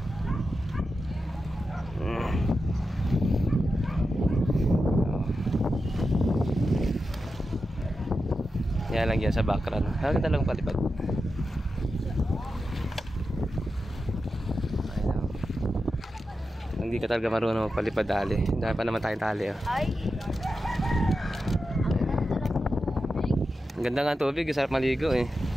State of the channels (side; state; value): both; normal; correlation 0.90